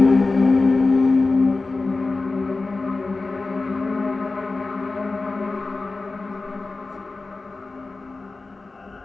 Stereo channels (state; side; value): quieter; right; 3.6 dB